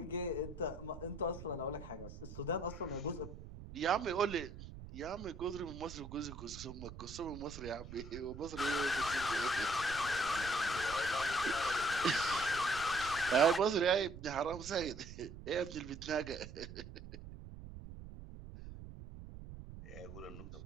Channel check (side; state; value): right; noise; rumble, 12 dB below the sound